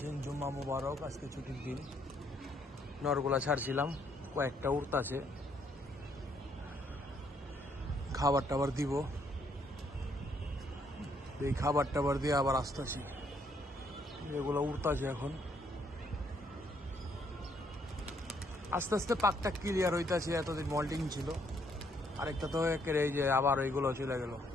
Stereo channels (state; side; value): normal; both; correlation 0.70